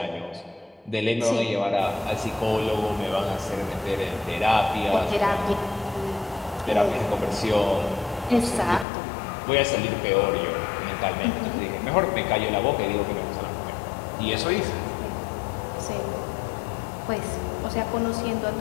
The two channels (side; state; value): right; drops out; at 8.8 s